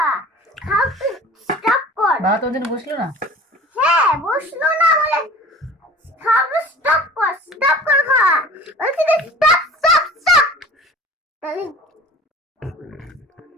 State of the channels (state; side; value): normal; both; correlation 0.44